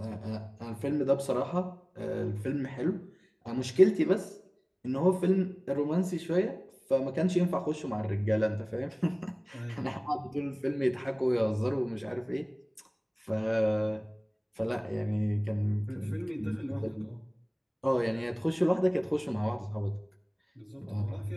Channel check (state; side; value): identical; both; correlation 1.00